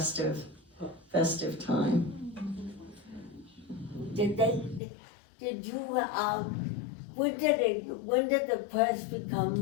time. Did you, when did the press become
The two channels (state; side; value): drops out; right; at 4.8 s